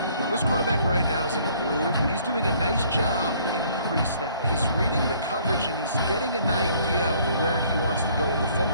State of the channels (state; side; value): inverted; both; correlation -0.59